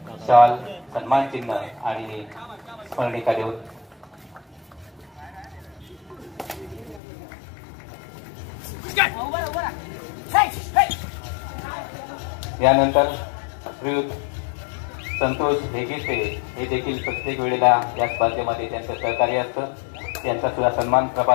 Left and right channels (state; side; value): drops out; right; at 7.0 s